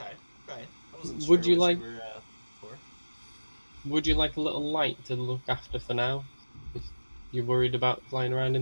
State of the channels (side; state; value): both; inverted; correlation -1.00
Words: I wasn't Would sure you what like- you were for. Would you like a little light to look after for now? If you're worried about flying around